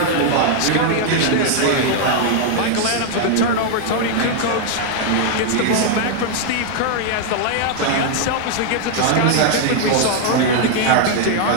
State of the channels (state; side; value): different; both; correlation 0.00